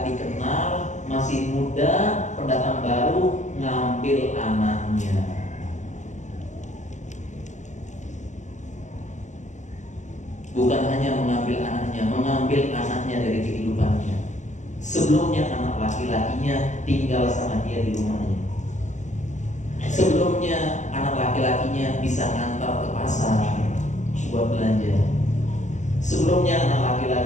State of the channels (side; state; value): right; late; 0.34 ms